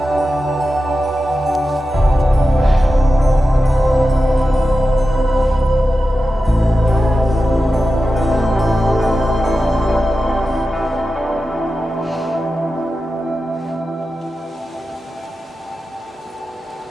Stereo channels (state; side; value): normal; both; correlation 0.92